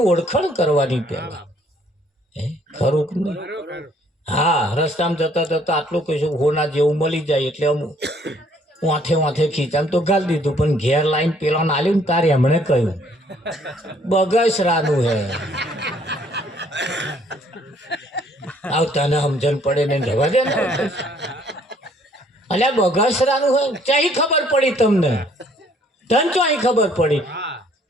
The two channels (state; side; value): normal; both; correlation 0.62